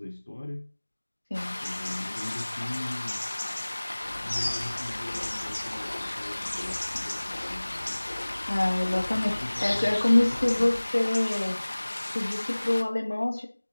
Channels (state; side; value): inverted; both; correlation -1.00